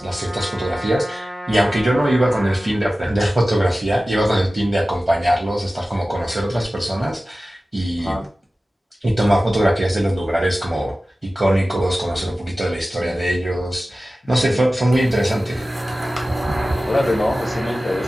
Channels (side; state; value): both; normal; correlation 0.96